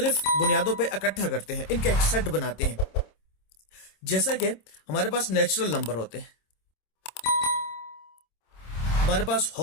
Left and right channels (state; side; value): late; right; 26 ms